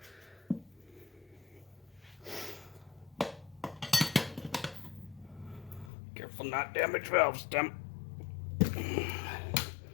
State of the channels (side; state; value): right; drops out; at 5.9 s